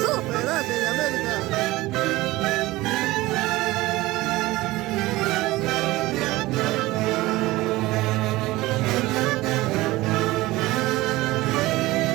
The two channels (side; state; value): left; quieter; 19.0 dB